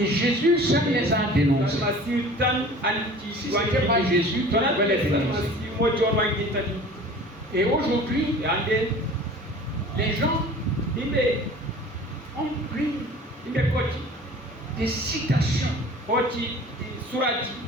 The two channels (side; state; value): both; normal; correlation 0.44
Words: Jésus seul les a dénoncés. Si ce n'était pas Jésus, tu pouvais les dénoncer. Et aujourd'hui, les gens ont pris des citations